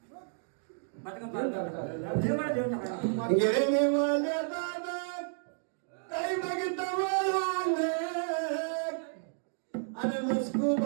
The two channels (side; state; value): left; silent; digital silence